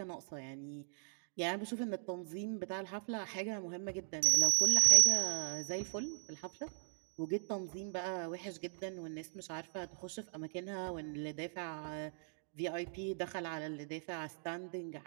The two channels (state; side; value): silent; left; digital silence